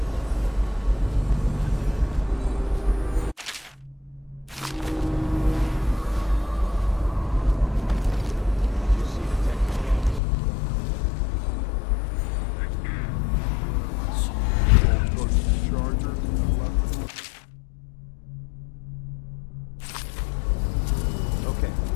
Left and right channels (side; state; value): right; drops out; at 10.2 s